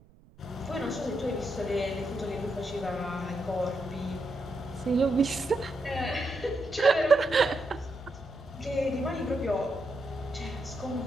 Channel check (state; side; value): noise; right; rumble, 26 dB below the sound